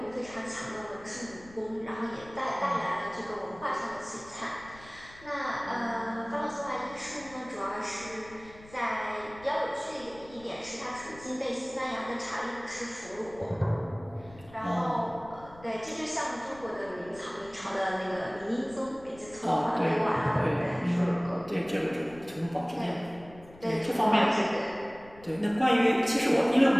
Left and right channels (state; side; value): noise; left; rumble, 21 dB below the sound